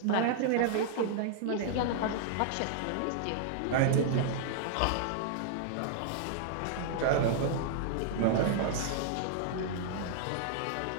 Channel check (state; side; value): different; both; correlation -0.01